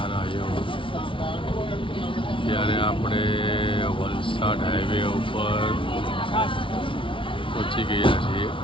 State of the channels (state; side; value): late; right; 0.25 ms